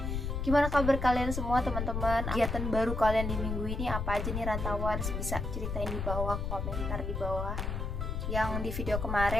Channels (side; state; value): left; noise; rumble, 3 dB below the sound